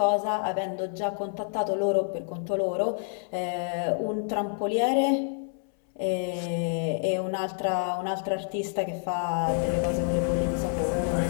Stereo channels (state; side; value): silent; right; 59 dB below the other